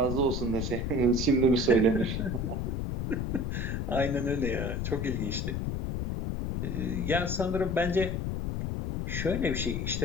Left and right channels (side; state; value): left; noise; rumble, 1 dB below the sound